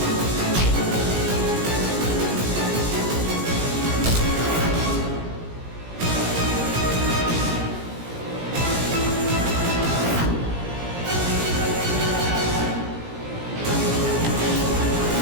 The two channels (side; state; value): left; late; 17 ms